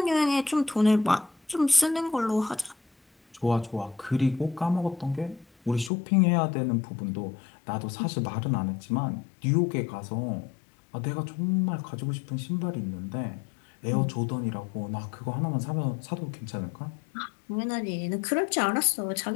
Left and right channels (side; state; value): right; drops out; at 5.9 s